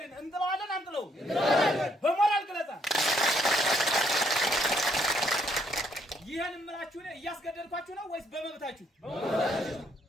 እንጥለዋለን አንጥለውም? በሞራል ግለጻ ይሄን እምላችሁ ነው። እያስገደድኳችሁ ነው ወይስ በመብታችሁ?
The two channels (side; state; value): both; normal; correlation 0.70